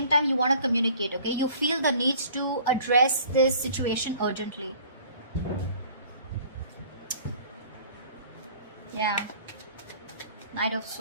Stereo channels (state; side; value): inverted; both; correlation -0.51